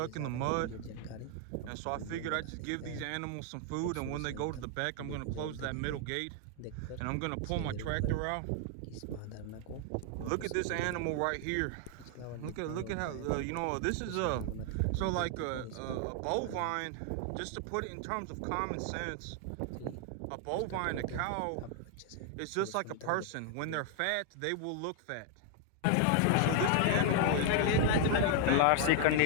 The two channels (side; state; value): both; different; correlation 0.00